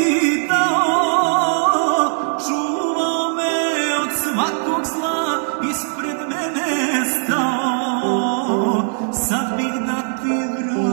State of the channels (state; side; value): silent; left; 61 dB below the other